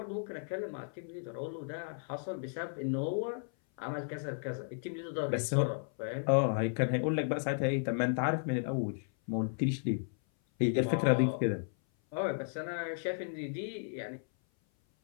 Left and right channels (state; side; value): silent; right; 55 dB below the other